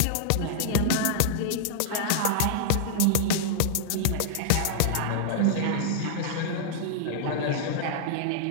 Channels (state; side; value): different; both; correlation -0.01